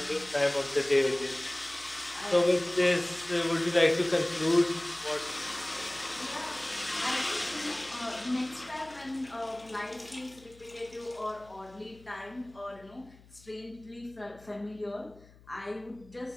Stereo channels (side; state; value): left; noise; hum, 24 dB below the sound